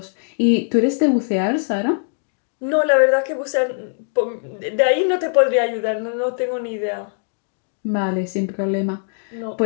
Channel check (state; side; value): silent; right; 59 dB below the other